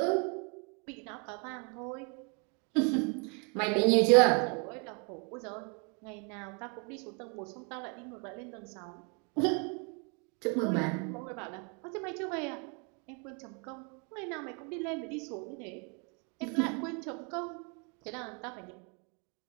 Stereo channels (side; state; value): left; quieter; 35.4 dB